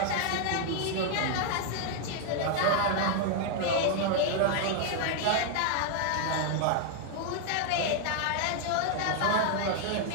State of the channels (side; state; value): both; different; correlation 0.00